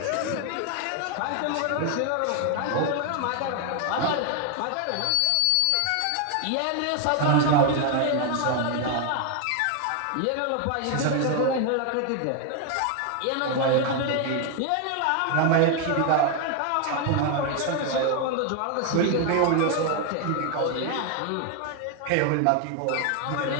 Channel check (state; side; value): different; both; correlation 0.01